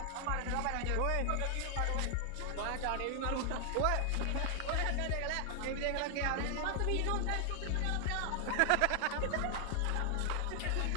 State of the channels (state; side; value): different; both; correlation 0.00